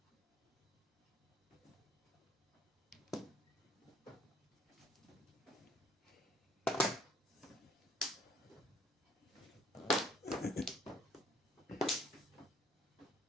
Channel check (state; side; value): normal; both; correlation 0.61